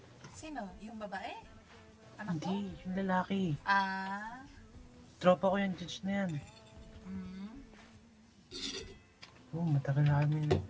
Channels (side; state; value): both; identical; correlation 1.00